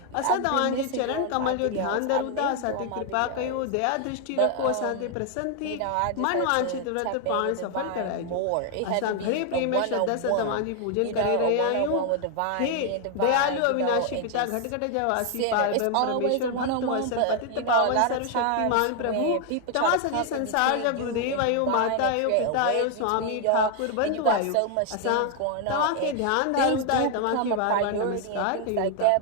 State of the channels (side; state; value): both; different; correlation 0.00